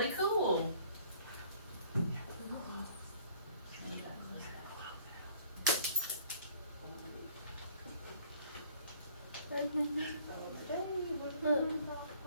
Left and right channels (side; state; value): both; inverted; correlation -0.56